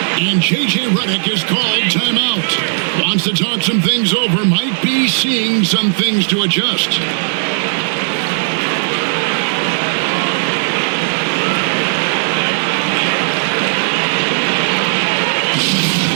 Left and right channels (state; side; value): silent; left; 68 dB below the other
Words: And J.J. Redick is called timeout. Wants to talk some things over. Might be seeing some things to adjust.